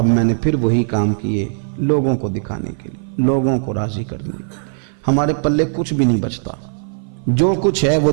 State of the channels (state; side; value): silent; left; 56 dB below the other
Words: میں نے پھر وہی کام کیے لوگوں کو دکھانے کے لیے، لوگوں کو راضی کرنے کے لیے۔ ہمارے پلے کچھ بھی نہیں بچتا، جو کچھ ہے وہ